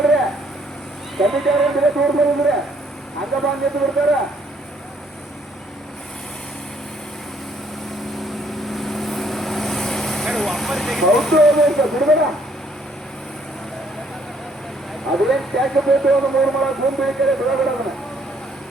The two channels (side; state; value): both; normal; correlation 0.66